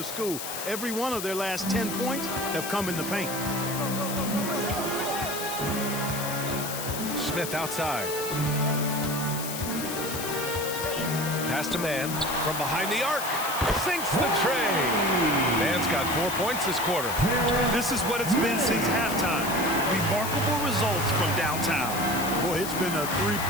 school. Every one of their last 10 points have come in the paint. Smith outside. Pass to Mann from behind the arc. Sinks the tray. Mann's got 4 points this quarter. This is what it's been since halftime. Remarkable results from downtown. Boy, it's been a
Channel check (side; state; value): left; noise; hiss, 6 dB below the sound